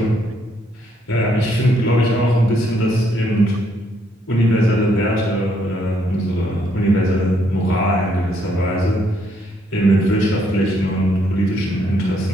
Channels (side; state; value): both; normal; correlation 0.71